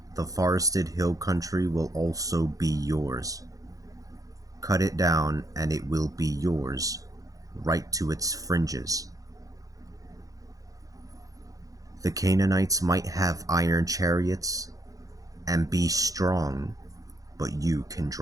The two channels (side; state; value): left; late; 0.17 ms